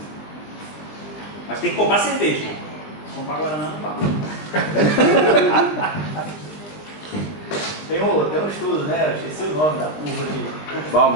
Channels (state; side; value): late; right; 19 ms